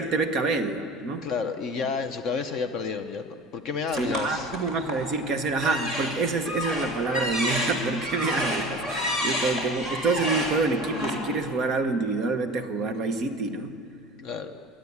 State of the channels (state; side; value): normal; both; correlation 0.38